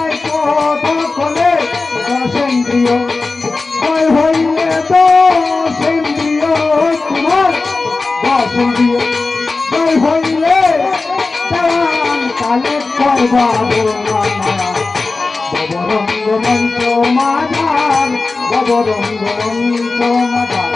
কথা বলে দশেন্দ্রিয় জয় হইলে দশেন্দ্রিয় তোমার দশেন্দ্রিয় জয় হইলে দেওয়ান কালে করবা ববরঙ্গ মন্ত্র মাধার ববরঙ্গ মন্ত্র মাধার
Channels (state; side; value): quieter; right; 3.7 dB